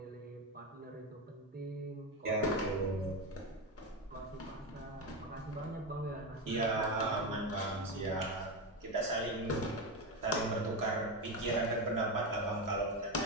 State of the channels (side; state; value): both; normal; correlation 0.15